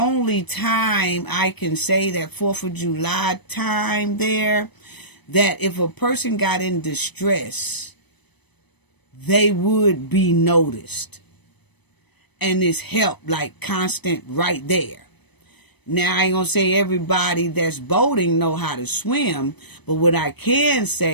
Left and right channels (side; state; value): right; late; 0.99 ms